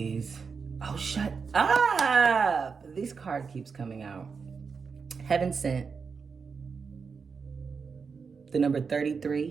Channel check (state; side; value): quieter; left; 5.4 dB